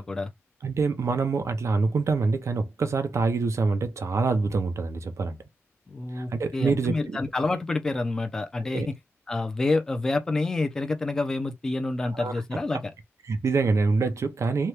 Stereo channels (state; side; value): normal; both; correlation 0.87